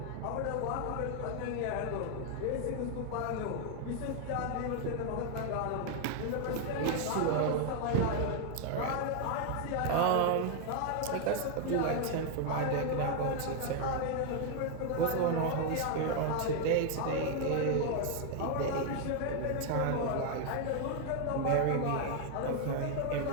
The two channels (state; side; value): different; both; correlation 0.01